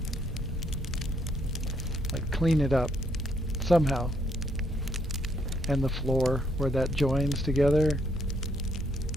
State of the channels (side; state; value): both; normal; correlation 0.72